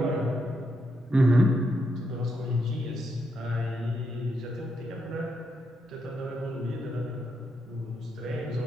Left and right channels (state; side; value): normal; both; correlation 0.80